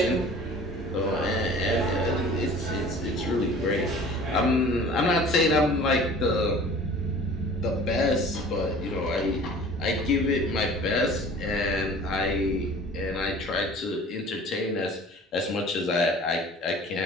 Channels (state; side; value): normal; both; correlation 0.45